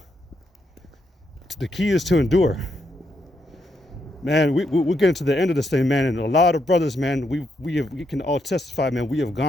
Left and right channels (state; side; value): normal; both; correlation 0.79